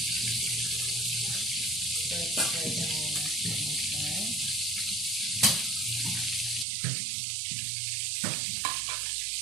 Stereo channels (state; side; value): drops out; left; at 6.7 s